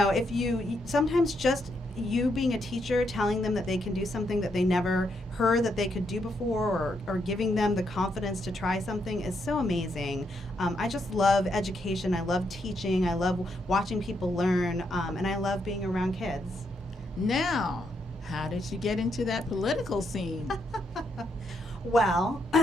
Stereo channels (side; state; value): both; normal; correlation 0.78